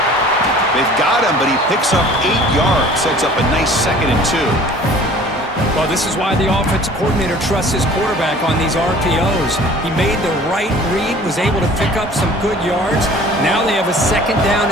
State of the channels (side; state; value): both; normal; correlation 0.48